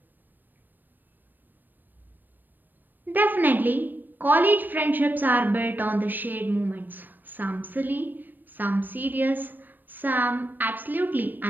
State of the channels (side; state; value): left; late; 0.091 ms